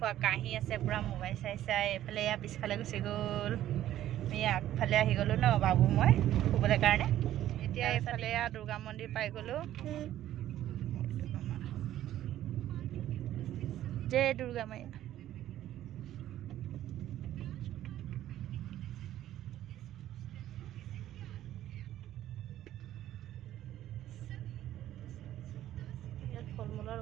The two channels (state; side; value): quieter; left; 12.8 dB